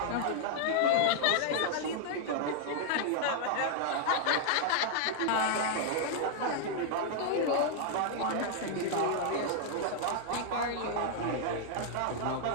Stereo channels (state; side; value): different; both; correlation -0.01